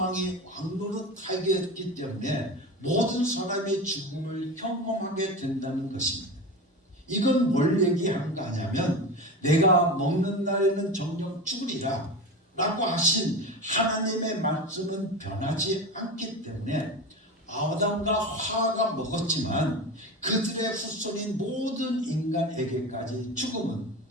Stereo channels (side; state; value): both; normal; correlation 0.26